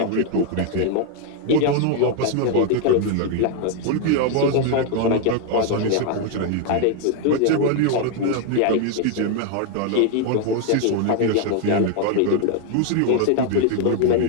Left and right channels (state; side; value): different; both; correlation 0.01